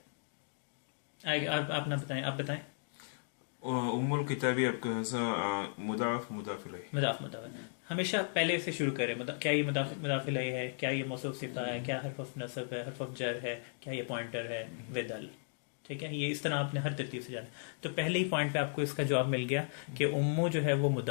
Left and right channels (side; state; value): right; silent; digital silence